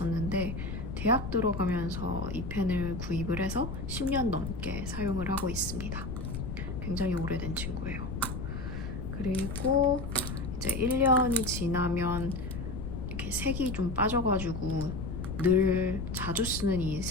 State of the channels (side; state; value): left; noise; rumble, 5 dB below the sound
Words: 대학 들어가면서 이 펜을 구입을 해서 10년 넘게 사용을 하고 있습니다. 굉장히 오래된 친구예요. 그리고 이제 1년이 지나면 이렇게 색이 좀 빠져가지고 늘 자주 쓰는 이